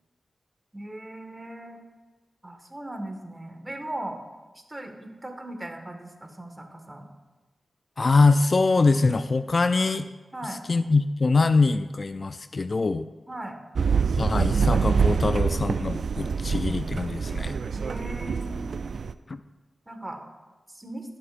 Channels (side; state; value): both; normal; correlation 0.89